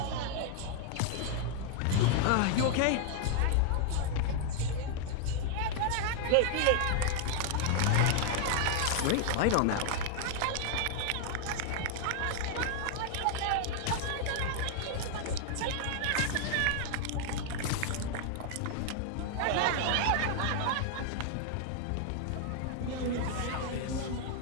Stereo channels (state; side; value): different; both; correlation 0.00